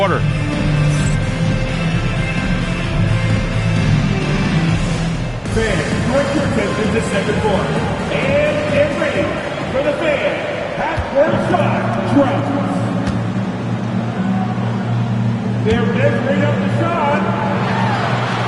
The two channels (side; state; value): both; identical; correlation 1.00